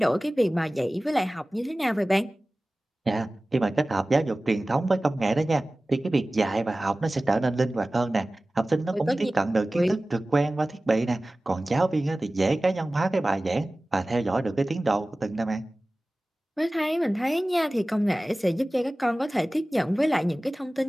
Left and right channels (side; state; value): both; normal; correlation 0.97